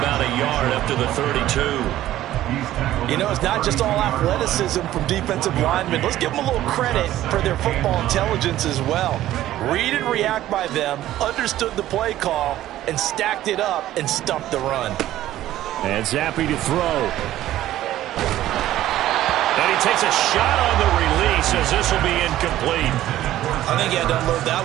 a yard up to the 32. You know, it's not just all athleticism from defensive linemen. Let's give them a little credit for their football intelligence as well. Read and react by them, understood the play call, and stacked it up and stuffed the run. And Zappi to throw. And he takes a shot on the release as this will be incomplete. I think he had to unload that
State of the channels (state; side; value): quieter; left; 13.9 dB